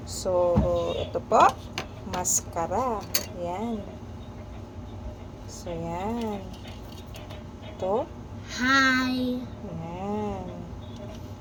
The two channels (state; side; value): identical; both; correlation 1.00